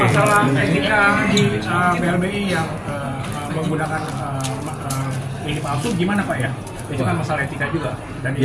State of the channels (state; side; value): identical; both; correlation 1.00